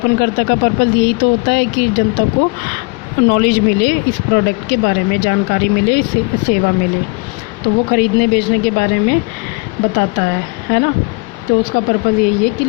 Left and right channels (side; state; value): right; quieter; 29.4 dB